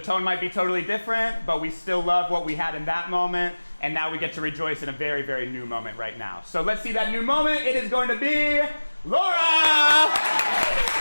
might be totally different, but we still love what we had in that moment, and now we get to rejoice in a very, very new moment right now. So let's see that new moment. It is going to be Laura!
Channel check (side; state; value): both; inverted; correlation -1.00